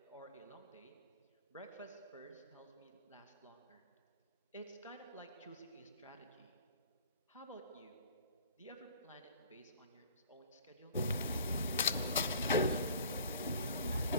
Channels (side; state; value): both; inverted; correlation -0.50